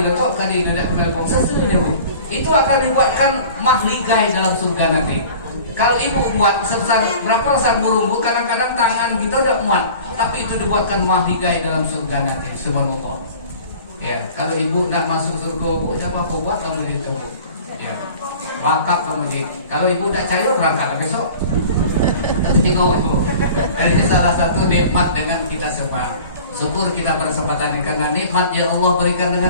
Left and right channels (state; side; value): inverted; both; correlation -0.44